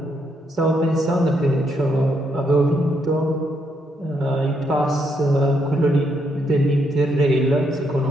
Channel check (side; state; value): both; normal; correlation 0.76